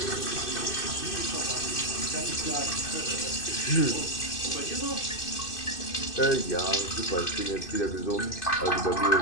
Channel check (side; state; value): right; late; 2.6 ms